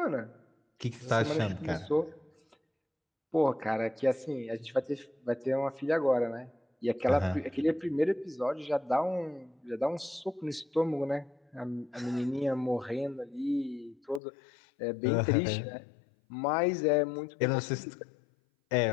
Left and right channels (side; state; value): right; drops out; at 14.2 s